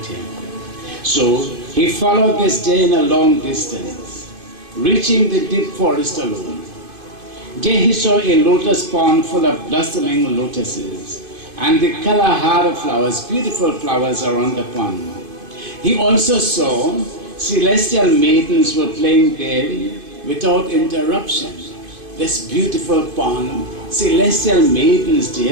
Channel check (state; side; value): late; left; 2.5 ms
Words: So he followed this Jain a long distance, reaching the deep forest alone. There he saw a lotus pond full of blossoming lotuses and the Kalahara flowers, beautiful flowers around the pond. He also saw celestial maidens were playing there without interruption. This beautiful pond, celestial maidens